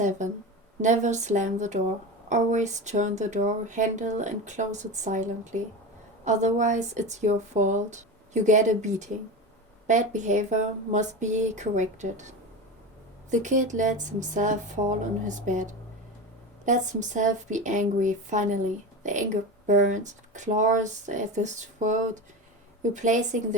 Never slam the door. Always turn the door handle and close it silently. Otherwise, it's your fault. You get a beating. Bad behavior must be corrected. The kid lets himself fall on his bed. Lets himself be angry finally. The anger burns, claws at his throat, replacing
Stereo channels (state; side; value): normal; both; correlation 0.25